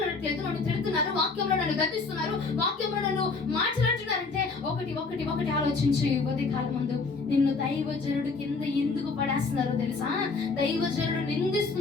నన్ను తిడుతున్నారు, వాక్యంలో నన్ను గద్దిస్తున్నారు, వాక్యంలో నన్ను మాట్లాడుతున్నారంటే ఒకటి ఆలోచించి కొద్ది కాలం ముందు నిన్ను దైవజనుడు కింద ఎందుకు పడేస్తున్నారో తెలుసా? దైవజనుడు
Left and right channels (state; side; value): quieter; right; 4.2 dB